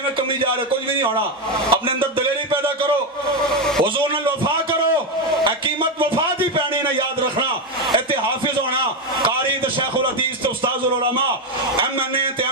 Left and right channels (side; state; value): both; normal; correlation 0.09